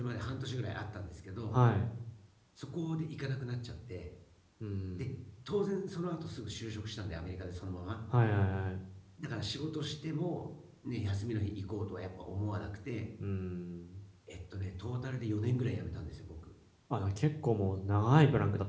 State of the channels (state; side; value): identical; both; correlation 1.00